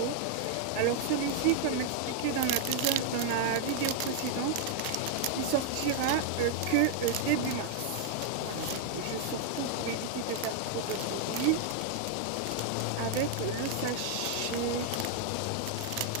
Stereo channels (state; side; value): different; both; correlation 0.00